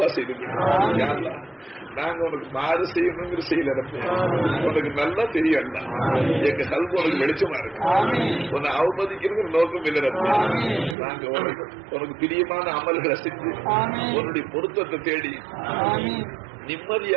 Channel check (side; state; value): left; drops out; at 11.0 s